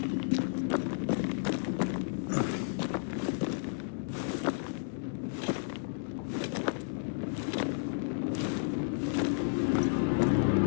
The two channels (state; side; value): silent; right; digital silence